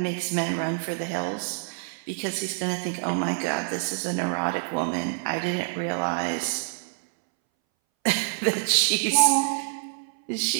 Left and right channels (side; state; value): left; silent; 61 dB below the other